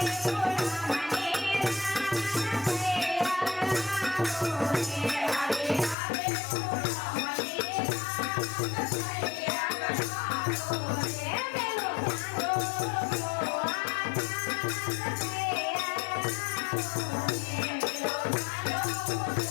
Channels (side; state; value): right; drops out; at 6.0 s